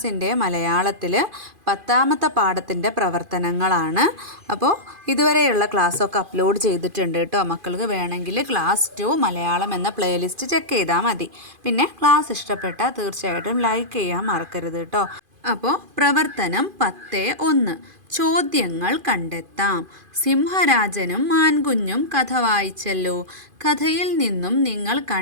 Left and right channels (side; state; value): left; late; 2.5 ms